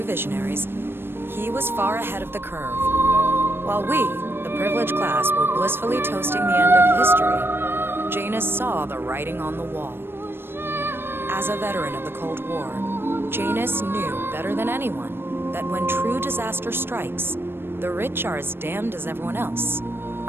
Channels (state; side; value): late; left; 0.11 ms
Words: visionaries, he was far ahead of the curve. While we, the privileged class, were blissfully toasting the end of history, Janus saw the writing on the wall. As a veteran of the Cold War, Janus knew better than anyone that when true disaster strikes, the rich are as damned as everyone else,